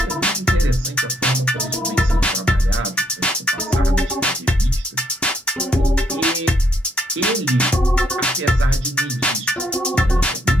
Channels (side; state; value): both; normal; correlation 0.72